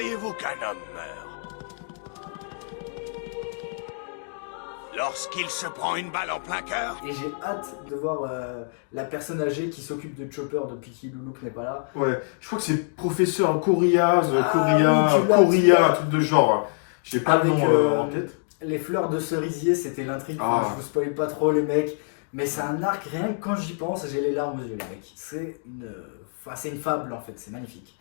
qu'un homme meurt? Lorsqu'il se prend une balle en plein cœur? Et j'ai hâte de voir la personne âgée qui s'occupe de Chopper depuis qu'Iloulouk n'est pas là. Ouais, je crois que c'est professeur Coria, oui, tu l'as, Coria, un truc de genre. J'ai pas Avec, le nom en tête. Les fleurs de cerisier, c'était l'intrigue. Ah. Enfin, je vous spoil pas trop, les mecs. Mais c'est un arc, rien que quand j'y pense, j'ai les larmes aux yeux, les mecs. C'est une fable en fait, c'est magnifique.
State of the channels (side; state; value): right; silent; 61 dB below the other